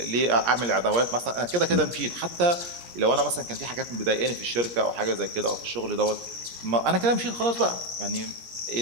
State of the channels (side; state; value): left; late; 17 ms